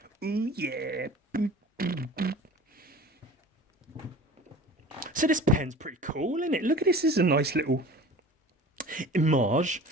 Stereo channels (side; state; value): both; normal; correlation 0.41